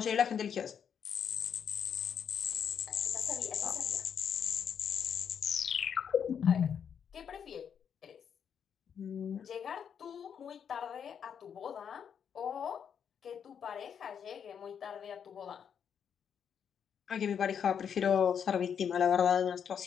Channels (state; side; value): quieter; right; 7.7 dB